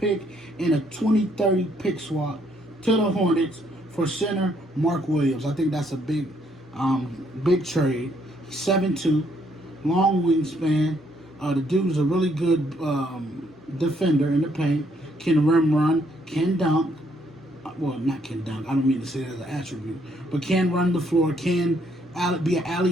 and a 2030 pick swap to the Hornets for center Mark Williams. I think that's a big trade. 7'2", long wingspan. The dude's a really good defender in the paint. Can rim run, can dunk. Well, not can dunk. I don't mean to say that as an attribute, but can run the floor. Can be an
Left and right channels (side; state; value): both; normal; correlation 0.70